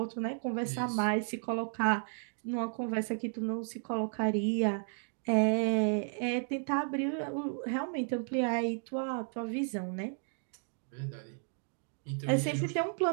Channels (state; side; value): silent; left; 55 dB below the other